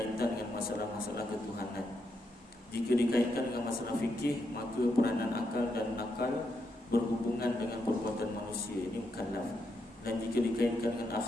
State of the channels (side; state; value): both; normal; correlation 0.81